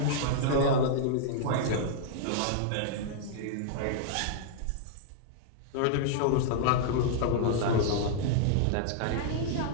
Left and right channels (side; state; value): both; different; correlation -0.01